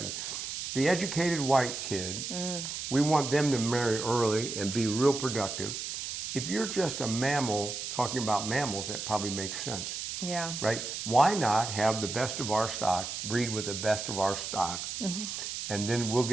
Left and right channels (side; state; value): right; noise; hiss, 5 dB below the sound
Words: be. The educated white kid, we want them to marry early and be real productive. If you're just a mammal talking about mammals, that probably makes sense. Right? Why not have the best of our stock, breed with the best of our stock, and then we'll